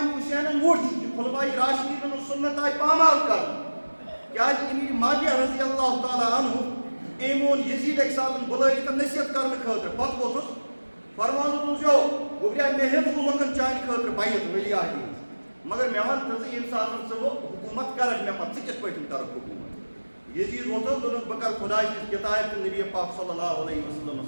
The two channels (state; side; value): inverted; both; correlation -1.00